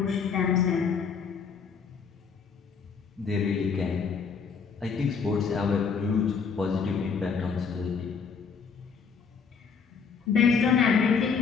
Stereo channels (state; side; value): quieter; right; 5.9 dB